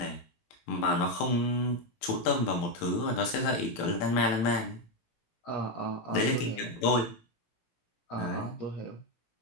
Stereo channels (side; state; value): right; late; 17 ms